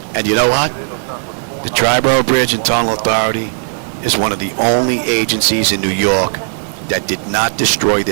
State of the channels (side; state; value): left; silent; 70 dB below the other